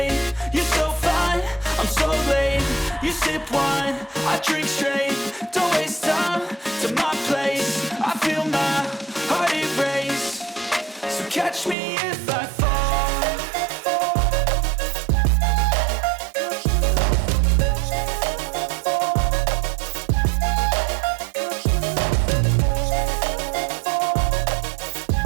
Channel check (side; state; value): left; drops out; at 11.8 s